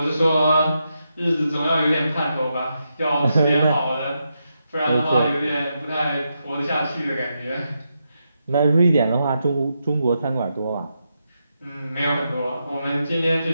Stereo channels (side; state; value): both; inverted; correlation -0.84